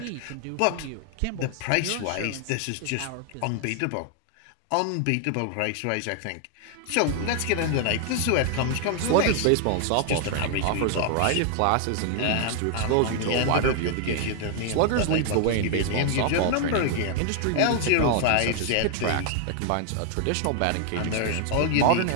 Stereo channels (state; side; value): different; both; correlation 0.00